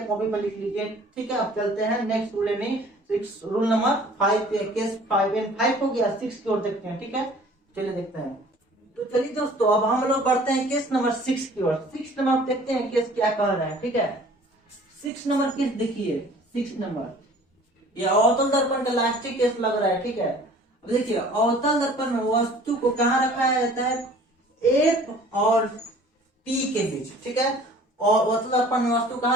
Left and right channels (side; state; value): both; normal; correlation 0.50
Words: कॉपी पर लिख लीजिए। ठीक है, अब चलते हैं नेक्स्ट रूल यानी 6 रूल नंबर 5 केस 5 एंड 5 हो गया। 6 की ओर देखते हैं। ठीक है, चलिए देखते हैं। तो चलिए दोस्तों, अब हम लोग बढ़ते हैं केस नंबर 6 की ओर। 6 नंबर देखते हैं केस क्या कह रहा है। ठीक है, 6 नंबर केस देखिए। 6 नंबर ये अवतल दर्पण का लास्टिक केस लग रहा है। ठीक है, अब देखिए अवतल दर्पण में वस्तु को कहाँ रखा जाता है? एफ और पी के बीच। ठीक है, और अवतल दर्पण में वस्तु